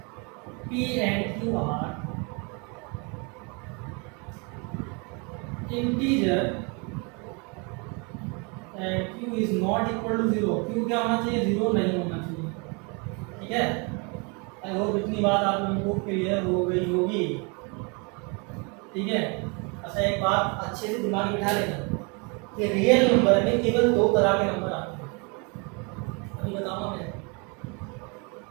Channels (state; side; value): quieter; left; 32.5 dB